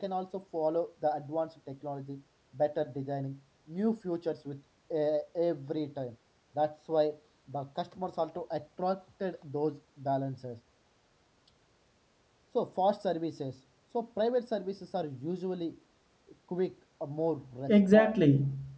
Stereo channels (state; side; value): identical; both; correlation 1.00